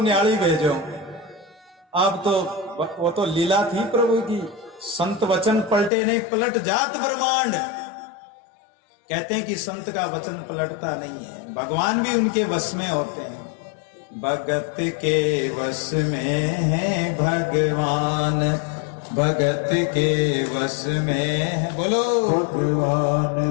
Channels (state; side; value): drops out; right; at 5.9 s